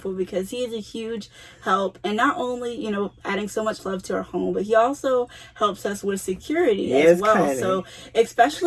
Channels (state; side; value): identical; both; correlation 1.00